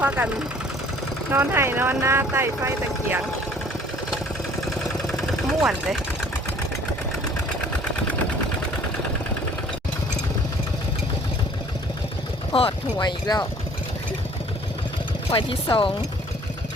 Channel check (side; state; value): both; normal; correlation 0.54